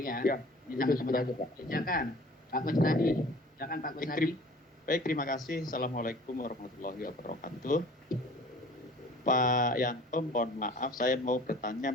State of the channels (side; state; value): both; normal; correlation 0.47